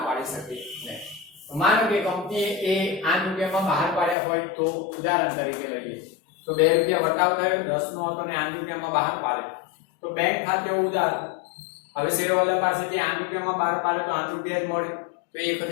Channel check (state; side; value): drops out; right; at 4.2 s